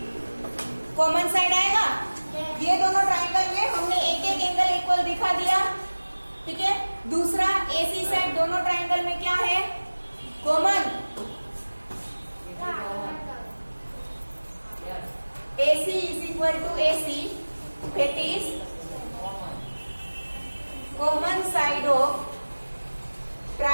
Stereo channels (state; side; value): inverted; both; correlation -1.00